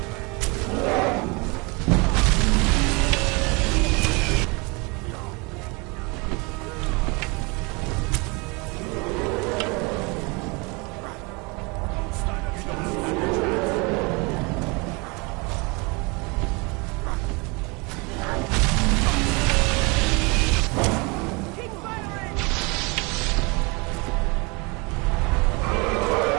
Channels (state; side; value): quieter; left; 28.5 dB